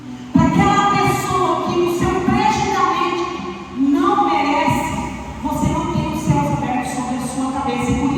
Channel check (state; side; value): identical; both; correlation 1.00